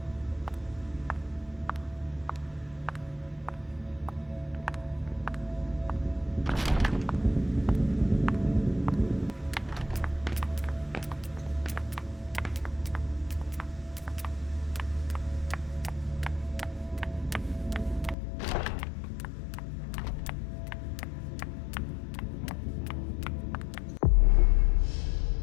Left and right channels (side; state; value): right; drops out; at 18.2 s